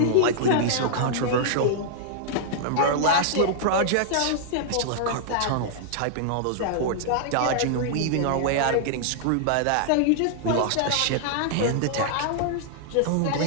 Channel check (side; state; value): both; different; correlation -0.01